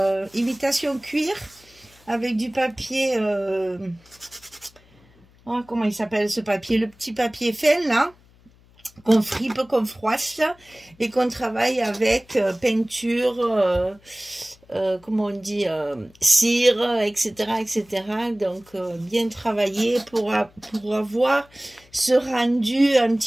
imitation cuir avec du papier... oh, comment il s'appelle ce papier? Le petit papier fin là, qu'on fripe, qu'on froisse et qu'on travaille avec peinture, comment on dit, cire, etc. etc. Donc bien travaillé pour avoir ce rendu un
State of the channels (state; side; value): noise; left; hum, 29 dB below the sound